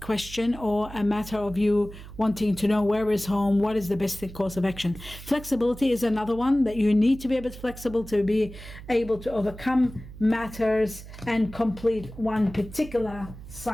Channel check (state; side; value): noise; right; hum, 15 dB below the sound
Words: or a matter of you wanting to know where is home, what is the best course of action. Flexibility is another one, that you need to be a bit flexible to be able to overcome matters and complete one particular